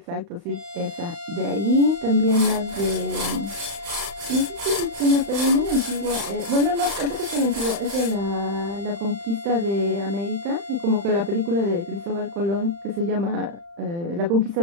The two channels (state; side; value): late; left; 35 ms